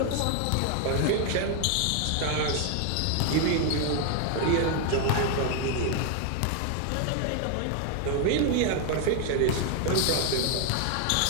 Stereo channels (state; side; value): different; both; correlation 0.00